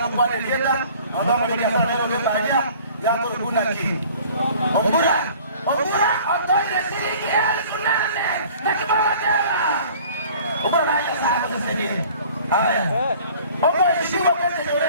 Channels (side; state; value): both; inverted; correlation -0.50